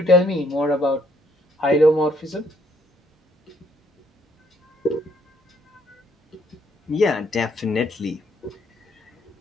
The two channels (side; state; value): both; normal; correlation 0.68